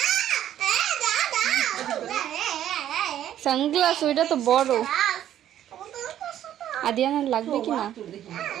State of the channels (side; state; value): left; quieter; 11.3 dB